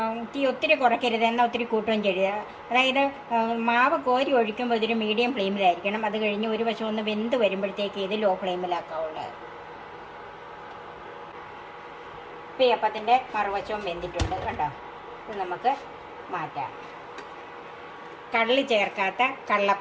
തീ ഒത്തിരി കുറയ്ക്കരുത്, എന്നാൽ ഒത്തിരി കൂട്ടുകയും ചെയ്യരുത്. അതായത് മാവ് കോരി ഒഴിക്കുമ്പോൾ ഇതൊരു മീഡിയം ഫ്ലെയിമിലായിരിക്കണം. അത് കഴിഞ്ഞ് ഒരു വശം ഒന്ന് വെന്ത് വരുമ്പോഴത്തേക്ക് ഇത് ലോ ഫ്ലെയിമിലാക്കാവുള്ളൂ. ഇപ്പം ഈ അപ്പത്തിൻ്റെ മറുവശവും വെന്തിട്ടുണ്ട് കണ്ടോ. ഇത് നമുക്ക് മാറ്റാം. കള്ളി ചേർക്കാത്ത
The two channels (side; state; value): both; identical; correlation 1.00